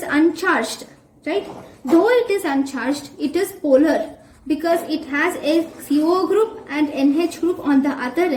uncharged, right? Though it is uncharged, it is polar because it has a CO group and NH group on the other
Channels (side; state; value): both; identical; correlation 1.00